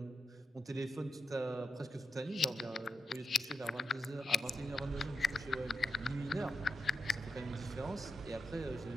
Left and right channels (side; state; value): both; normal; correlation 0.87